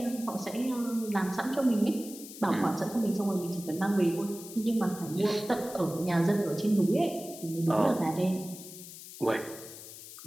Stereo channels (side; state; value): left; noise; hiss, 14 dB below the sound